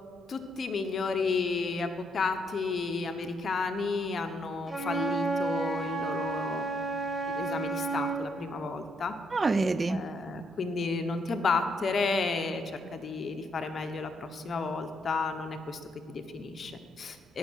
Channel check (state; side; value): normal; both; correlation 0.74